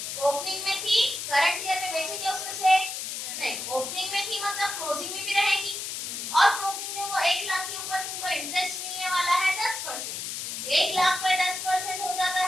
ओपनिंग में थी, करंट ईयर में बेचेंगे उसमें से नहीं, ओपनिंग में थी मतलब क्लोजिंग में भी रहेगी, और क्लोजिंग में वो 1 लाख के ऊपर तुमको इंटरेस्ट मिलने वाला है 10%, 1 लाख पे 10% हो जाता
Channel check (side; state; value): left; noise; hiss, 5 dB below the sound